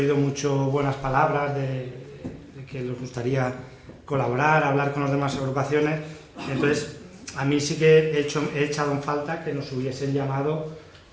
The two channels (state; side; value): identical; both; correlation 1.00